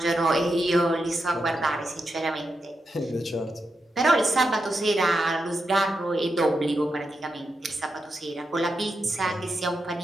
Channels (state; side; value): normal; both; correlation 0.86